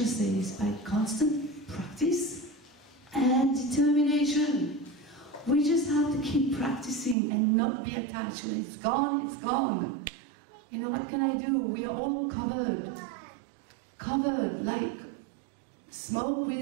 says, by constant practice and determination, we just have to keep practicing and not be attached. When it's gone, it's gone. You know, what can I do? We are all covered like smoke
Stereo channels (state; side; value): drops out; left; at 7.2 s